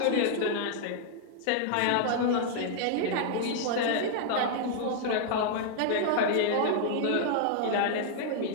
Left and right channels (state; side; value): different; both; correlation -0.01